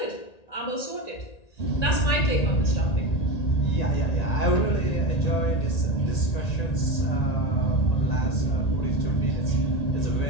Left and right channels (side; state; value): right; late; 1.9 ms